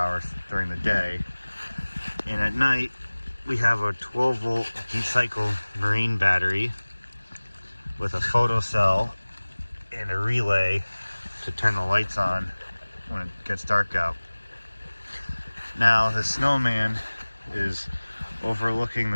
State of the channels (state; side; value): inverted; both; correlation -1.00